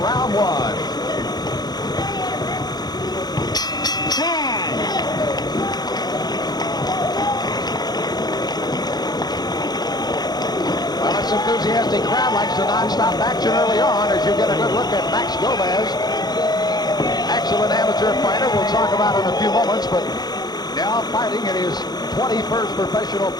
1. Well, this enthusiastic crowd likes the non-stop action early on as you get a good look at Max Gomez. Excellent amateur fighter we'll talk about in a few moments, but now fighting in his 21st professional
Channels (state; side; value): late; right; 0.19 ms